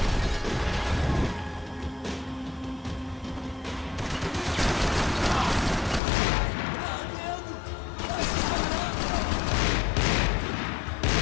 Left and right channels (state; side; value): drops out; right; at 6.0 s